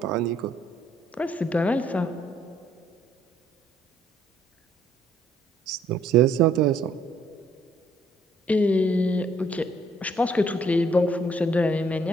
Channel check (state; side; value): normal; both; correlation 0.65